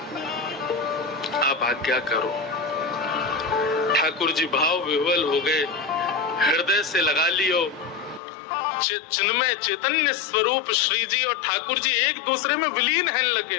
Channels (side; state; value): right; drops out; at 8.2 s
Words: आप आज्ञा करो। ठाकुर जी भाव विह्वल हो गए, हृदय से लगा लियो। चिन्मय चैतन्य स्वरूप श्री जी और ठाकुर जी एक दूसरे में विलीन हैं लगे।